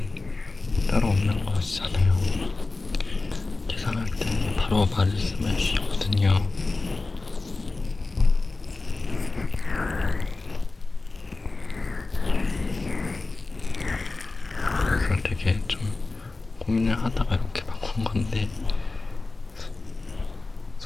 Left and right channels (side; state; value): right; quieter; 3.5 dB